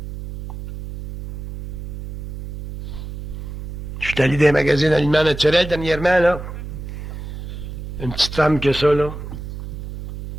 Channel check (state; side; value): noise; right; hum, 8 dB below the sound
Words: Je suis allé dans les magazines aliments naturels dernièrement, là. Une petite femme que ça, là.